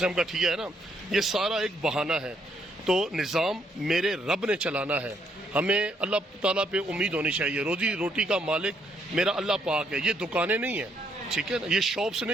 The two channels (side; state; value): both; normal; correlation 0.72